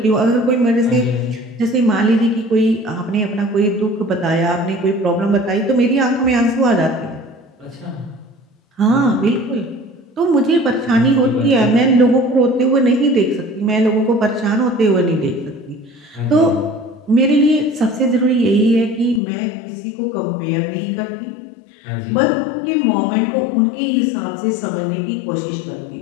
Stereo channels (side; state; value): right; drops out; at 19.2 s